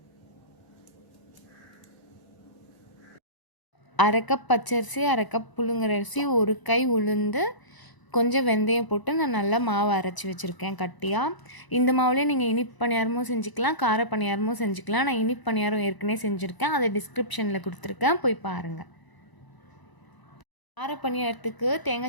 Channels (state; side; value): late; right; 1.0 ms